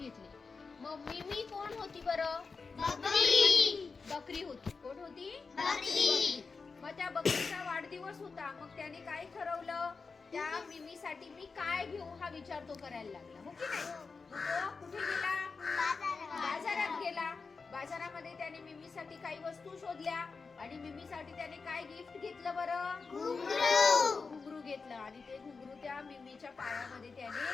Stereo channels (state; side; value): quieter; right; 4.6 dB